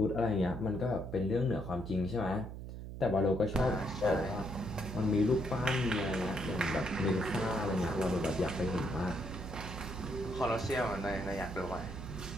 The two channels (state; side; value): noise; right; hum, 9 dB below the sound